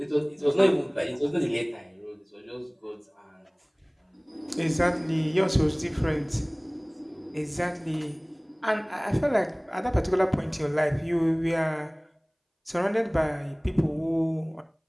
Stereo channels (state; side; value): identical; both; correlation 1.00